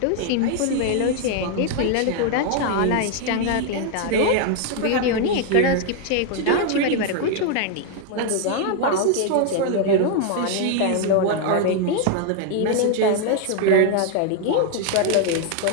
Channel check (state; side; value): different; both; correlation 0.00